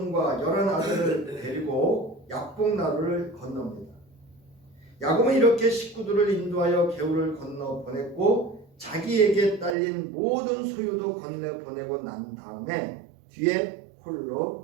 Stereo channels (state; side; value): drops out; left; at 9.8 s